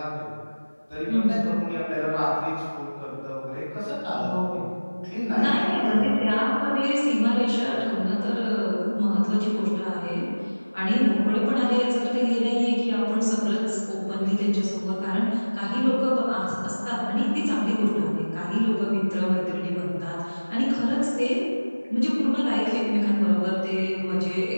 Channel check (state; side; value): inverted; both; correlation -1.00